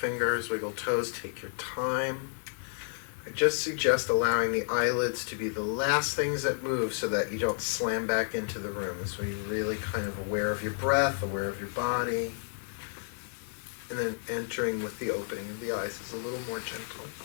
wiggle toes, take your time. I just suggest allowing the eyelids to be the last things that move so that you don't slam back into the room. So you're really kind of aware of your breath, aware of your body, and then entering with the opening of the eyes is a little more gentle.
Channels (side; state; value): right; silent; digital silence